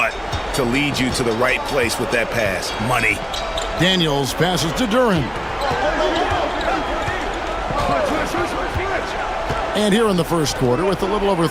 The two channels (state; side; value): identical; both; correlation 1.00